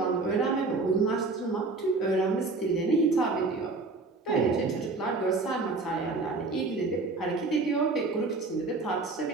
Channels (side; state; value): left; quieter; 3.7 dB